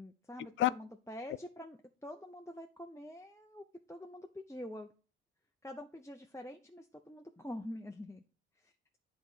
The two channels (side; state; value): right; quieter; 6.9 dB